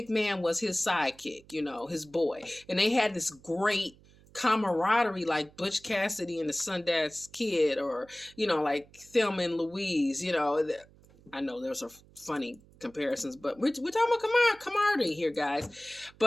was his sidekick, his boy. And they had this great camaraderie, like Butch Cassidy and the Sundance Kid, or like Thelma and Louise. I know there's a funny comparisons, but we're talking about camaraderie here, guys.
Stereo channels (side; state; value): right; noise; hum, 26 dB below the sound